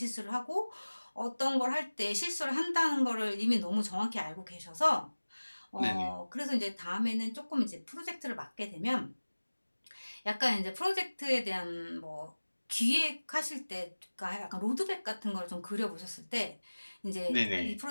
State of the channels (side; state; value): both; inverted; correlation -1.00